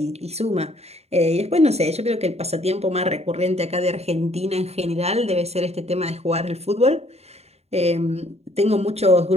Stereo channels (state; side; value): late; left; 0.30 ms